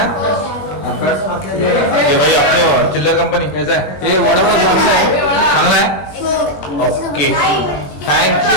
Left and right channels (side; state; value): right; late; 21 ms